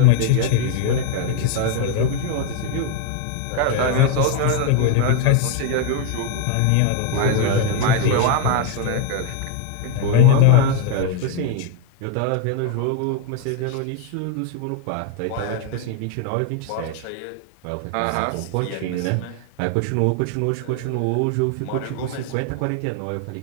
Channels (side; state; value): both; different; correlation 0.01